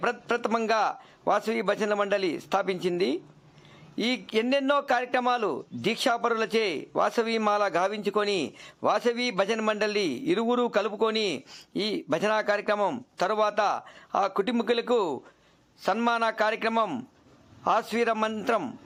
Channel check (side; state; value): both; identical; correlation 1.00